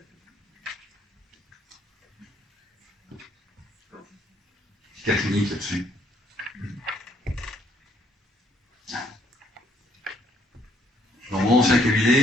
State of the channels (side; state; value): both; normal; correlation 0.67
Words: Petit cas clinique là-dessus. Dans mon ancien